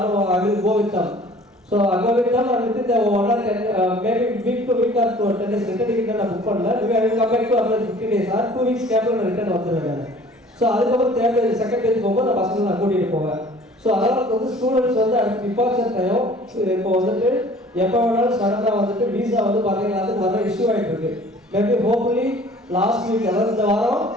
I will go with them. So அங்கே வித் தம் அண்ட் வித் இந்த 1 or 10 maybe week to week or 10 days return ticket நான் புக் பண்ணல. I will come back to apply 15 days or 2 weeks கேப்பில் நான் return வந்துடுவேன். So அதுக்கப்புறம் third page second page போகும்போது நான் பசங்களை நான் கூட்டிகிட்டு போவேன். ஸோ அதனால் வந்து ஸ்டூடெண்ட்ஸ் வந்து அடுத்து டிபார்ச்சர் டைம் இப்போ வந்துட்டு எப்போ வேணாலும் சடனாக வந்துட்டு வீசா வந்து பார்த்தீங்கன்னா அதுக்கு வர இஷ்யூ ஆகிட்டு இருக்கு. மேபி ஹோப்ஃபுல்லி லாஸ்ட் வீக் அதாவது இந்த வாரம்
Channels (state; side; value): normal; both; correlation 0.50